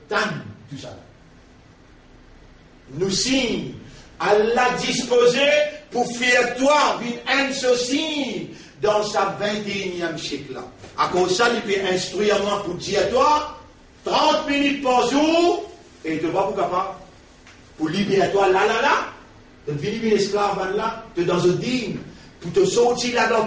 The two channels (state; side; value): identical; both; correlation 1.00